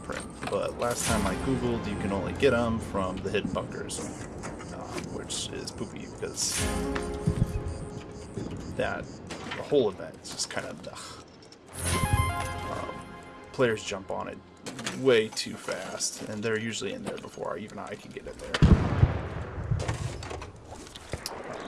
But last time I googled, you can only get them from the hidden bunkers, which is poopy because the whole event is just kind of players jump on it way too fast, and they're usually in there before even I can get in there.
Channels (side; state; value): both; identical; correlation 1.00